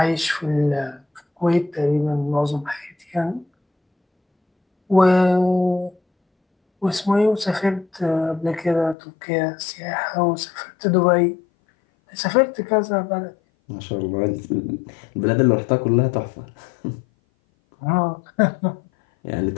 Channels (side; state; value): right; drops out; at 9.0 s